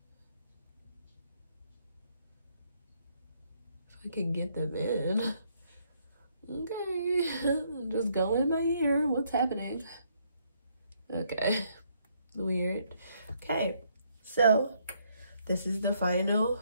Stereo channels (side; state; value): both; inverted; correlation -0.71